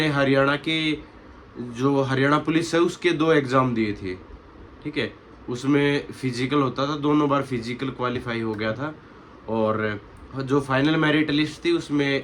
हरियाणा के जो हरियाणा पुलिस है उसके 2 एग्ज़ाम दिए थे, ठीक है। उसमें फिजिकल होता था, दोनों बार फिजिकल क्वालिफाई हो गया था और जो फाइनल मेरिट लिस्ट थी उसमें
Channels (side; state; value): both; identical; correlation 1.00